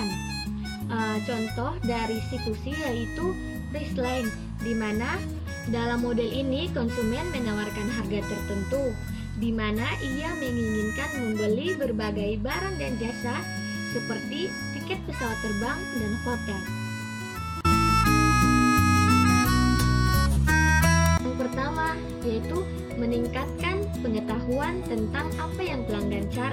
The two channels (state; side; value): identical; both; correlation 1.00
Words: Contoh dari C2C yaitu Priceline, di mana dalam model ini konsumen menawarkan harga tertentu, di mana ia menginginkan membeli berbagai barang dan jasa seperti tiket pesawat terbang dan hotel. Yang pertama yaitu meningkatkan pengetahuan tentang apa yang pelanggan